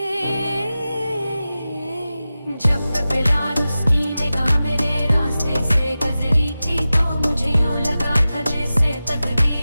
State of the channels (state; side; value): inverted; both; correlation -0.95